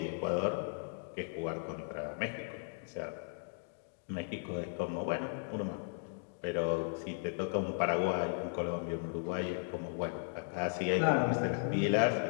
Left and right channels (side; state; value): right; silent; digital silence